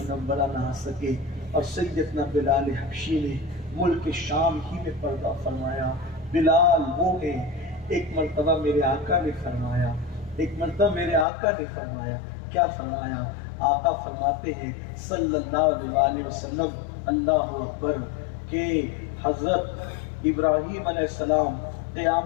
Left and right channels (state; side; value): drops out; right; at 11.2 s